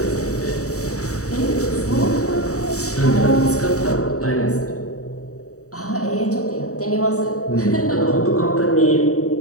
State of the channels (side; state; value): right; late; 0.65 ms